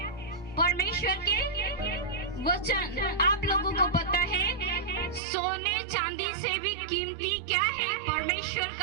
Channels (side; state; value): left; drops out; at 5.2 s